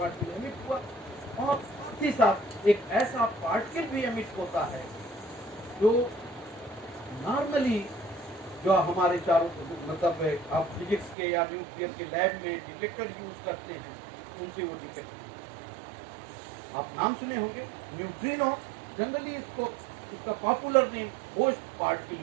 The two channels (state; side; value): drops out; left; at 11.2 s